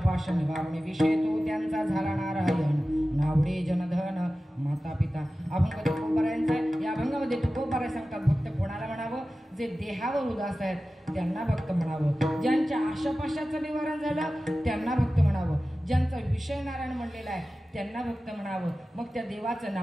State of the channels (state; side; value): normal; both; correlation 0.95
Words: निवारणे विषय तो त्यांचा झाला नारायण नावडे जनधन माता पिता. अभंग तुकोबारायांचा आहे. या अभंगामध्ये तुकोबाराय सांगतात भक्त कोणाला म्हणावं? जे देहावर उदास आहेत त्यांना भक्त म्हणावं. ज्यांच्या आशापाशाचं निवारण झालं त्यांना भक्त म्हणावं. ज्यांचा विषय नारायण म्हणलेला आहे त्यांना भक्त म्हणावं. मग त्या देवाचं